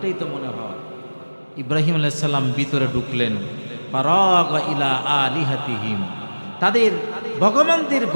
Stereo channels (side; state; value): both; inverted; correlation -1.00